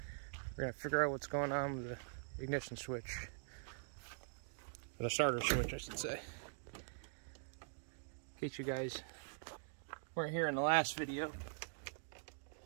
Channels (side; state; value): left; silent; digital silence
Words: we're going to figure out what's going on with the ignition switch. Or the starter switch, I should say. In case you guys weren't here in the last video.